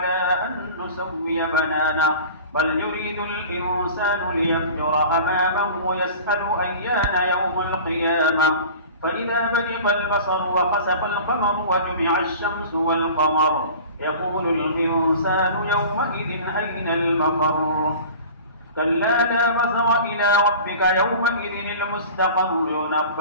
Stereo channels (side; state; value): both; inverted; correlation -0.40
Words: أن نسوي بنانه بل يريد الإنسان ليفجر أمامه يسأل أيان يوم القيامة فإذا برق البصر وخسف القمر وجمع الشمس والقمر يقول الإنسان يومئذ أين المفر كلا لا وزر إلى ربك يومئذ المستقر